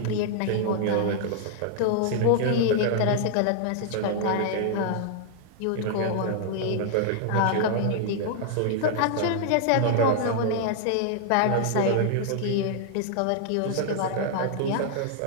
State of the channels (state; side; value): different; both; correlation -0.01